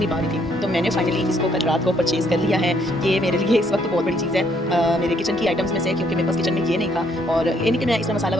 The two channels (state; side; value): normal; both; correlation 0.68